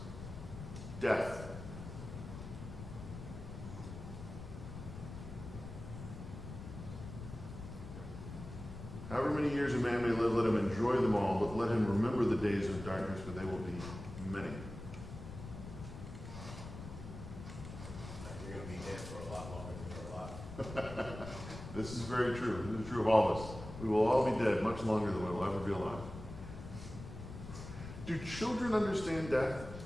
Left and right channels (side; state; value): left; noise; rumble, 10 dB below the sound